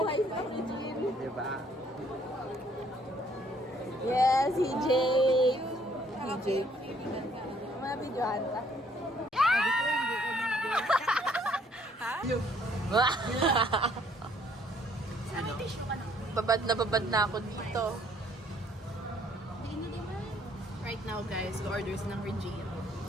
sa Regine. Di ba? Yes, si Jake. Si Jake. Mga videohan ka. Sabi tissue ka na. Babad na ako dito. Right now, guys, orders ng Regine.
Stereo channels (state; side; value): normal; both; correlation 0.64